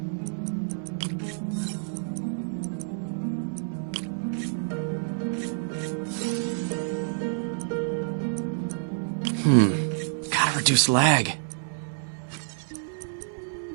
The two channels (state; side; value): silent; left; 56 dB below the other